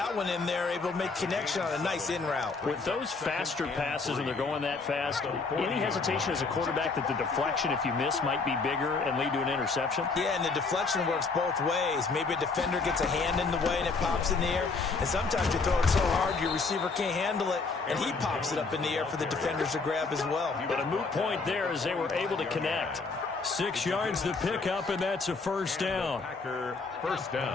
one in there, able to make connection on a nice in route. With those faster passes and they're going that fast, any hesitation as a quarterback that the deflection, if you miss, might be bigger and lead to an interception? Yeah, and the deflection works both ways. Maybe a defender gets a hand in the way and it pops in the air. And sometimes you throw it so hard your receiver can't handle it, and he pops it up in the air for the defenders to grab as well. But a moot point there as they were able to connect. 6 yards the pickup, and that's a 1st down. Packer 1st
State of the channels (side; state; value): right; quieter; 4.2 dB